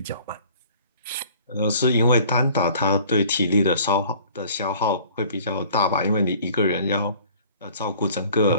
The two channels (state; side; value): inverted; both; correlation -0.51